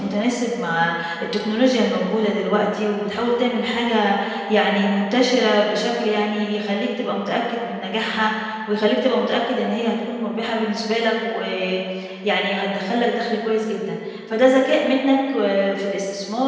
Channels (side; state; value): both; identical; correlation 1.00